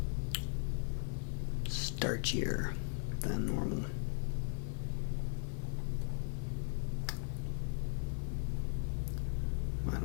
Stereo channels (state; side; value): silent; right; 52 dB below the other